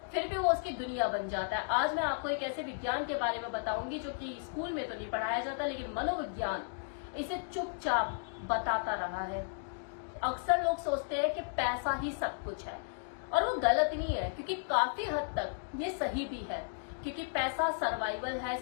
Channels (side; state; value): right; silent; digital silence